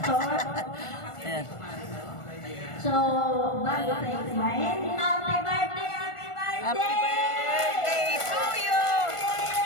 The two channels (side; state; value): right; late; 1.4 ms